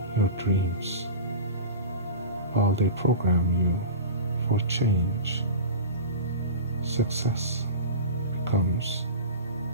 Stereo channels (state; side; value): inverted; both; correlation -0.31